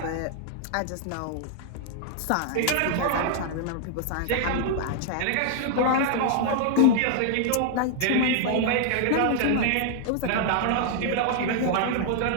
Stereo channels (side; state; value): both; different; correlation 0.00